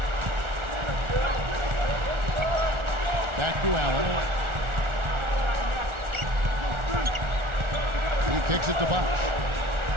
Back to Allen. He kicks it to Bosch.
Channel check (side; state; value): left; late; 1.4 ms